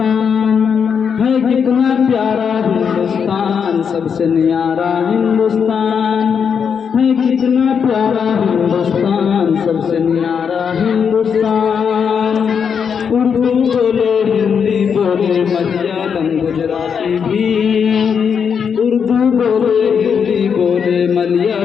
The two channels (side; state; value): right; quieter; 6.8 dB